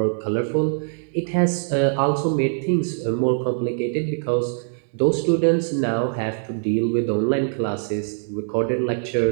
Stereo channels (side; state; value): left; silent; digital silence